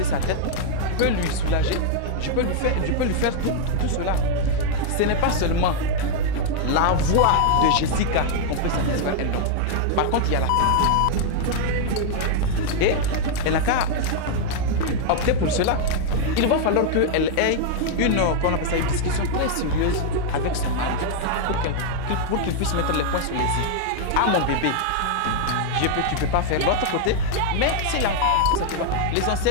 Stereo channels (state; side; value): different; both; correlation 0.00